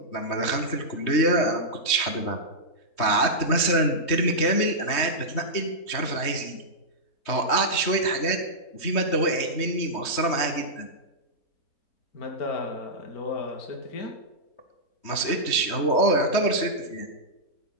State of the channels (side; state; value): right; late; 3.2 ms